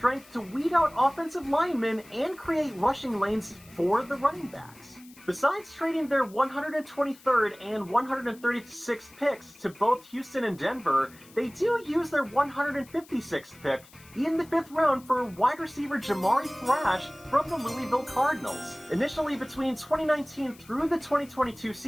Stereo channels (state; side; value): noise; left; hiss, 24 dB below the sound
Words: to weed out offensive linemen and create rushing lanes for the running backs. Besides trading their 123rd and 136th picks to both Houston and Denver, they do use their 156th pick in the 5th round for wide receiver Jamari Thrash from the Louisville Cardinals. Initially between 2019 through the 2022